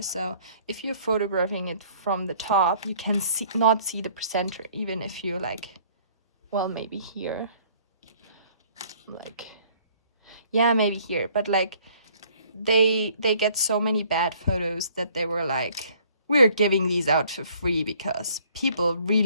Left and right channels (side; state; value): both; inverted; correlation -0.58